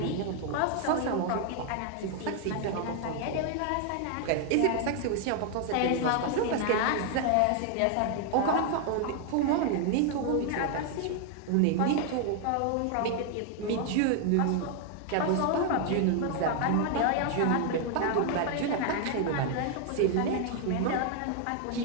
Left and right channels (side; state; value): both; different; correlation 0.00